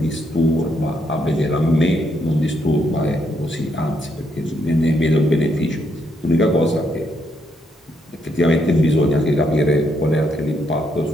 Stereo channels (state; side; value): normal; both; correlation 0.76